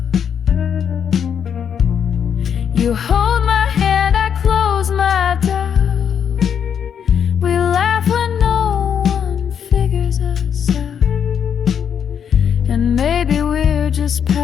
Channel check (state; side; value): quieter; right; 7.9 dB